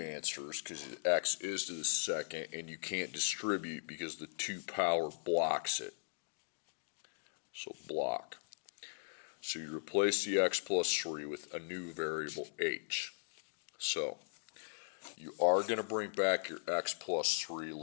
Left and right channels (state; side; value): silent; right; digital silence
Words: because x is to the second, and you can't distribute because the 2 power blocks it. So block. So you replace the x plus 3 with a new variable h. So you are going to bring back your x plus 3